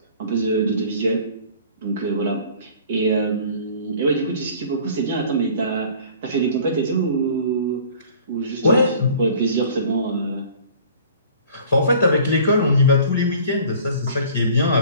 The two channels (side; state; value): both; inverted; correlation -0.49